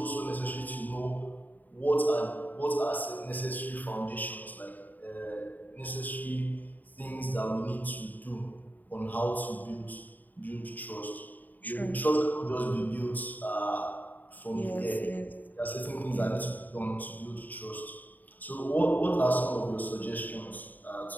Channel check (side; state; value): right; late; 0.084 ms